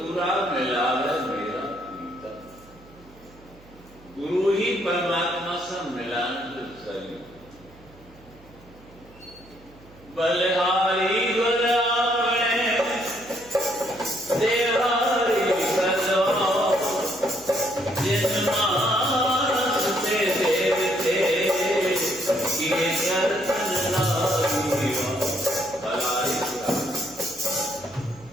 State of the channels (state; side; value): noise; right; hum, 25 dB below the sound